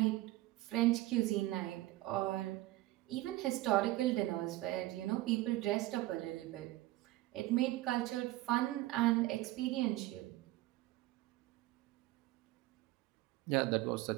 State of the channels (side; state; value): left; quieter; 17.6 dB